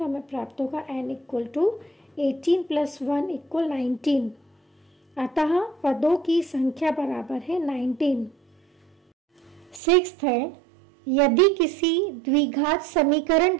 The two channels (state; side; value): drops out; left; at 9.8 s